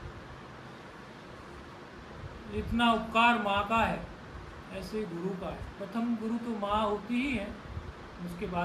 है। इतना उपकार माँ का है, ऐसे गुरु का है। प्रथम गुरु तो माँ होती ही है, उसके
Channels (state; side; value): identical; both; correlation 1.00